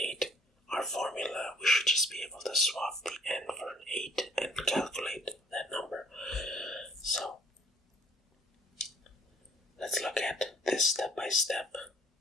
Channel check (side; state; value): both; normal; correlation 0.58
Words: our formula, we should just be able to swap the n for an 8 and calculate that number. So let's look at this step by step.